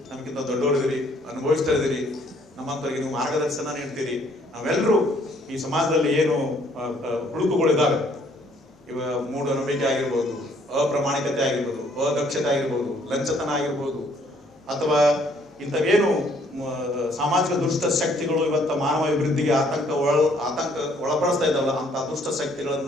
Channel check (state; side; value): normal; both; correlation 0.64